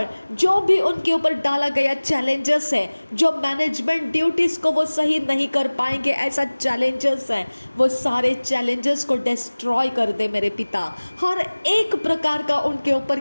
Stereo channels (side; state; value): both; inverted; correlation -1.00